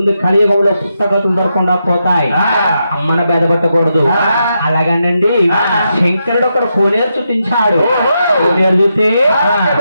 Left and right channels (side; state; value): both; inverted; correlation -0.84